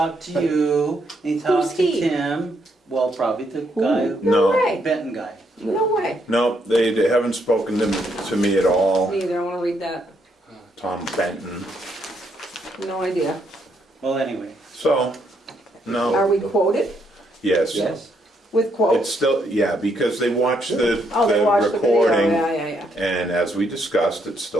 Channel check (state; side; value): normal; both; correlation 0.75